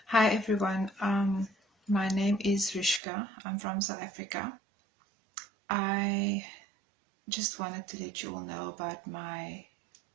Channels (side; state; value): left; drops out; at 3.0 s